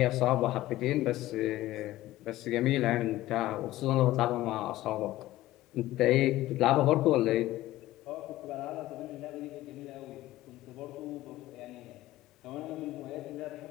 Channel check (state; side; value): quieter; right; 15.9 dB